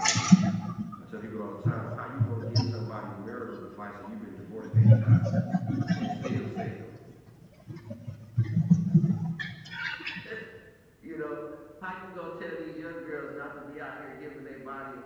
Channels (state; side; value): identical; both; correlation 1.00